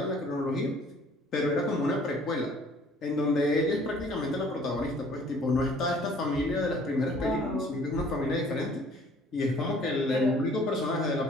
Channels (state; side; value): normal; both; correlation 0.55